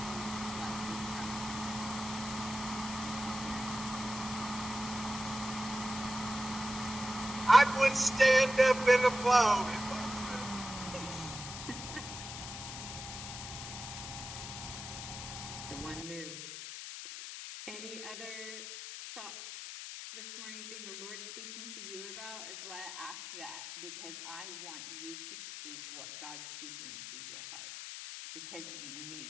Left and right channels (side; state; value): left; noise; hiss, 9 dB below the sound